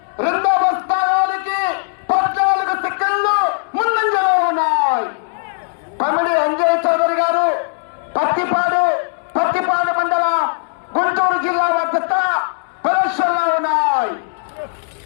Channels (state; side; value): silent; right; digital silence